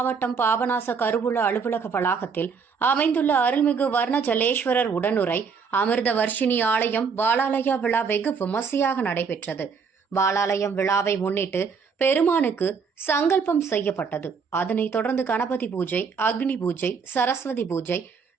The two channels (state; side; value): quieter; left; 5.7 dB